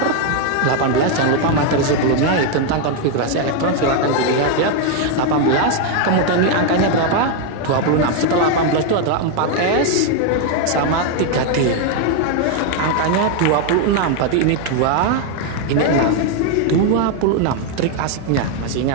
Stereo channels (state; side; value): different; both; correlation 0.01